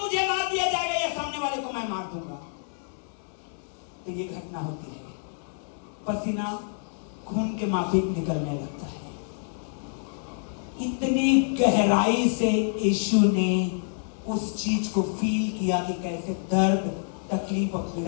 मुझे मार दिया जाएगा या सामने वाले को मैं मार दूंगा। तो ये घटना होती है, पसीना खून के माफिक निकलने लगता है। इतनी गहराई से यीशु ने उस चीज को फील किया कि कैसे दर्द, तकलीफ और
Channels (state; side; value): silent; right; digital silence